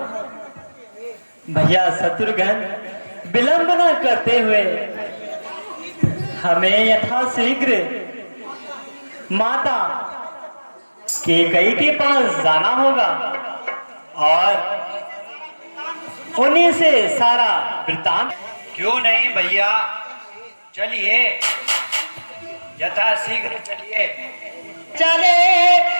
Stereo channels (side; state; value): both; inverted; correlation -1.00